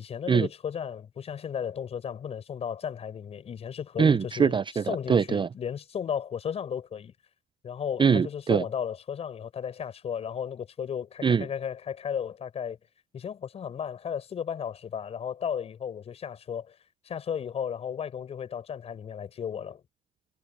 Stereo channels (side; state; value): both; normal; correlation 0.60